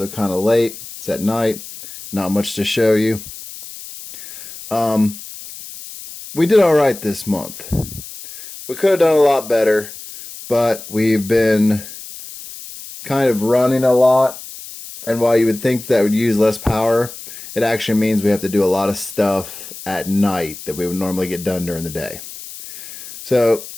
kind of late, it's at night, not much to show you. We did alright this month. We could have done a lot better, but we've been kind of running a lot, and while you would think that would use less power, it actually means we have to do a lot of stuff at night that we would normally get done during the day. So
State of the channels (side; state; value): left; noise; hiss, 14 dB below the sound